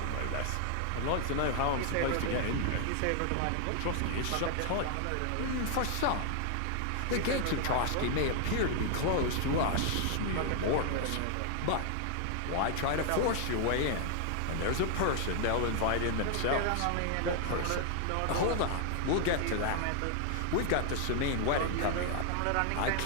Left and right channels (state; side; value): different; both; correlation 0.00